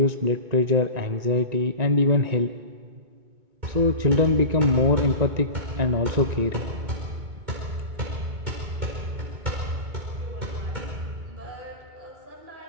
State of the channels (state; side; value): late; left; 2.2 ms